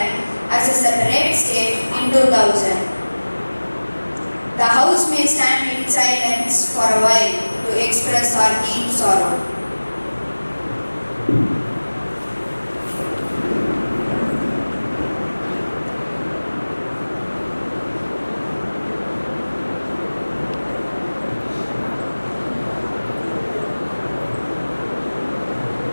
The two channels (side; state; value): both; inverted; correlation -1.00